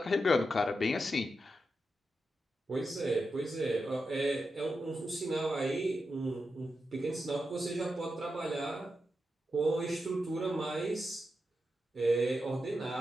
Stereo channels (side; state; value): both; normal; correlation 0.88